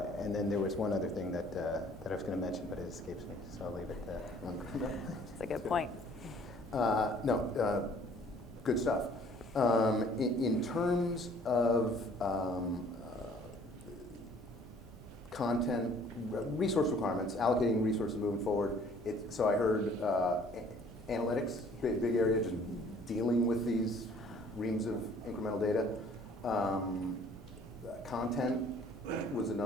then there was one other thing that I was going to mention, but it escapes me, so I'll leave it there. That's a good point. Good stuff. In terms of content, resource requirements, allocating resources moving forward, so I heard analytics, big area, just dealing with these reams of incremental data. Content was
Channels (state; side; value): normal; both; correlation 0.56